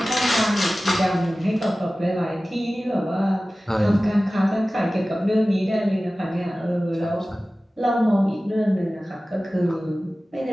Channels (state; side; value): normal; both; correlation 0.97